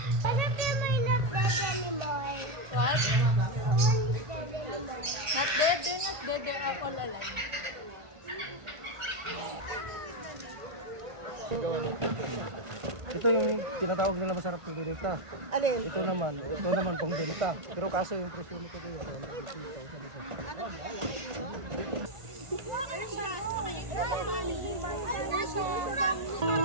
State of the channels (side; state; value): left; late; 1.5 ms